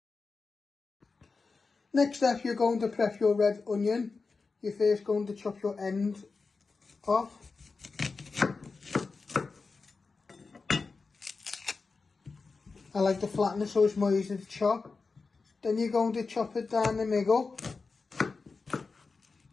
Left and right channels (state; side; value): quieter; right; 4.3 dB